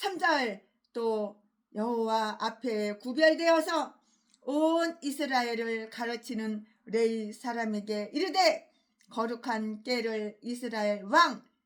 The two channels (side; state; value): both; identical; correlation 1.00